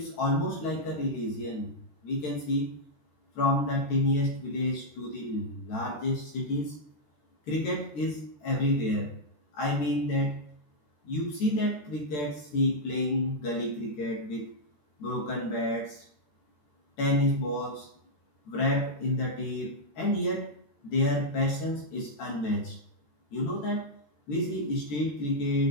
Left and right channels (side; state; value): right; late; 13 ms